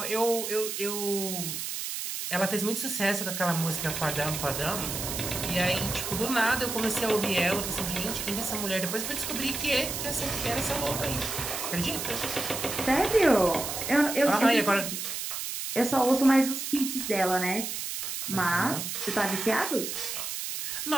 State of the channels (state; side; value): noise; right; hiss, 4 dB below the sound